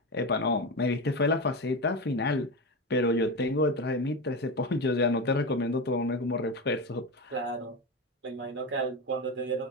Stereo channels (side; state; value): both; normal; correlation 0.19